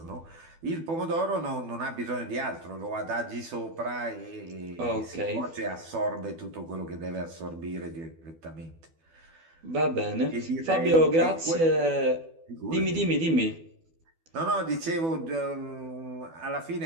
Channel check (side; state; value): left; late; 12 ms